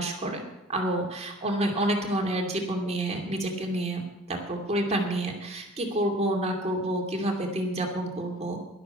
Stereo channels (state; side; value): normal; both; correlation 0.48